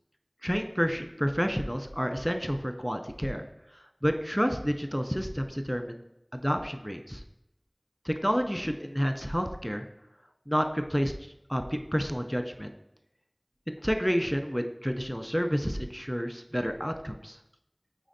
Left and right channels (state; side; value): identical; both; correlation 1.00